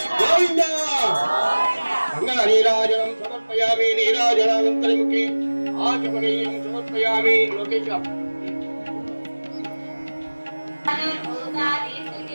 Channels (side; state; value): both; inverted; correlation -1.00